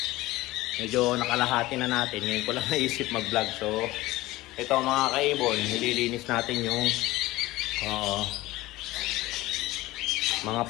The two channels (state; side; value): quieter; right; 18.5 dB